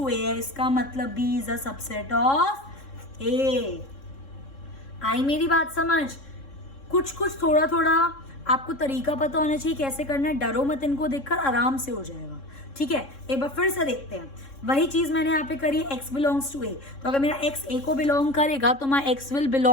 a है, इसका मतलब b is a subset of a। आई मेरी बात समझ? कुछ कुछ थोड़ा थोड़ा आपको तरीका पता होना चाहिए कैसे करना है, डरो मत, इनको देखकर आराम से हो जाएगा, ठीक है। एक बार फिर से देखते हैं, वही चीज मैंने यहाँ पे करी, x बिलोंग्स टू a, तो अगर मेरा x a को बिलोंग करेगा तो my x will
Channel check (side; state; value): right; late; 3.6 ms